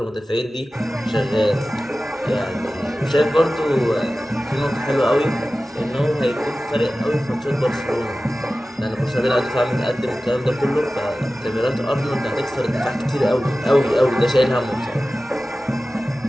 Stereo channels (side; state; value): both; normal; correlation 0.96